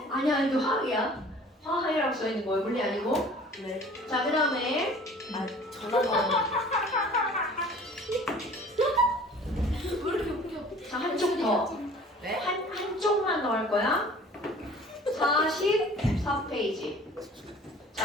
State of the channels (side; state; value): both; normal; correlation 0.48